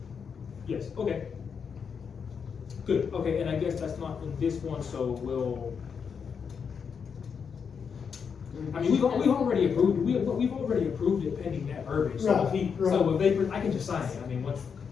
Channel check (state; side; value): quieter; right; 6.5 dB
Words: Yes, okay. Good, okay, and I guess that's not in this one, so we'll. I mean, we've already approved, we've already approved it pending that verbiage, so if he, Right, so if they, I can just sign it, I mean,